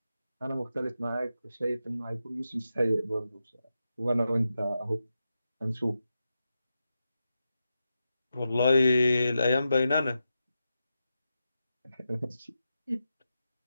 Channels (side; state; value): both; inverted; correlation -0.89